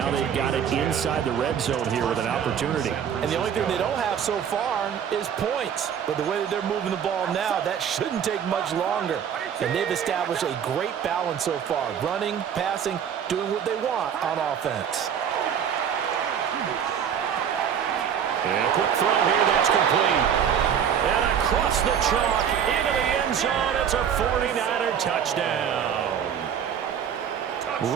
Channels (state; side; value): quieter; left; 8.3 dB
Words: they've got it inside the red zone here with an opportunity. And the only thing they don't have so far is points. But the way that they're moving the ball now, that shouldn't take much longer. And they've established a great balance so far. Running, passing, doing what they want on offense. And a quick throw here, that's complete. And across the chalk, into the end zone, it's a 49er touchdown.